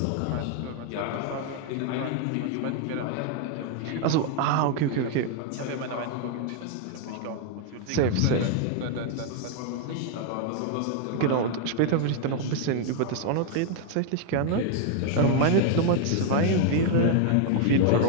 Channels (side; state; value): both; different; correlation 0.00